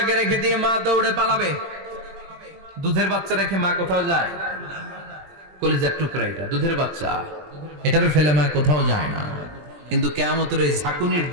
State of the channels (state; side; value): late; left; 20 ms